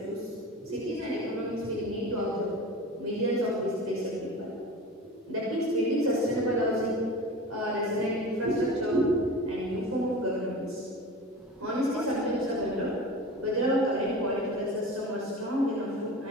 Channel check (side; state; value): both; normal; correlation 0.34